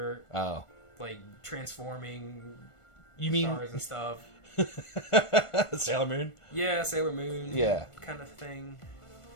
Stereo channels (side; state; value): right; late; 1.4 ms